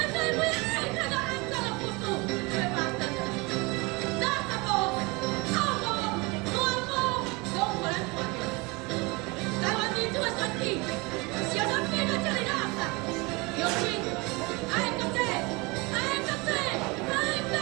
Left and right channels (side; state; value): left; quieter; 26.2 dB